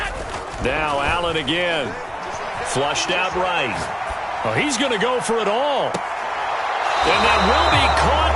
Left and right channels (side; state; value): both; identical; correlation 1.00